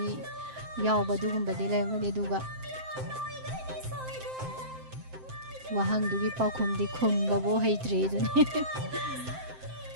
ꯌꯥꯎꯕ ꯑꯗꯨꯒꯨꯝꯕꯗꯤ ꯂꯩꯔꯝꯒꯅꯤ ꯑꯗꯨꯒ ꯋꯥꯍꯪꯗꯨꯒꯤ ꯄꯥꯎꯈꯨꯝꯗꯤ ꯈꯨꯝꯕꯕꯨ ꯍꯩꯇ꯭ꯔꯤ ꯑꯗꯨꯅꯤ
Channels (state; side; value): late; left; 7.7 ms